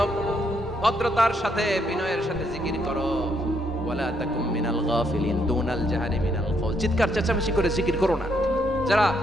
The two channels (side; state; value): both; normal; correlation 0.74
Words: ভদ্রতার সাথে বিনয়ের সাথে জিকির করো। ওয়ালা তাকুম মিনাল গাফিলিন, দুনাল জাহারি মিনাল কওল, চিৎকার চেঁচামেচি করে জিকির করো না। যারা